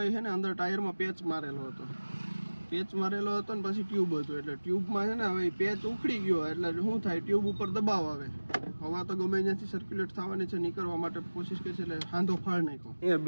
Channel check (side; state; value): both; inverted; correlation -1.00